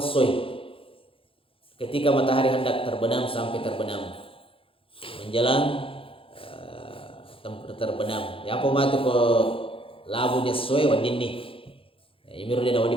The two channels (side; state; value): right; late; 0.26 ms